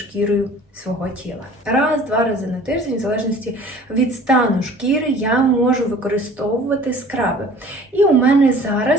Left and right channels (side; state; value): both; normal; correlation 0.48